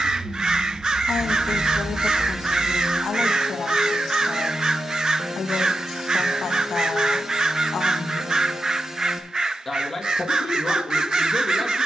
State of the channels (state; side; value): normal; both; correlation 0.89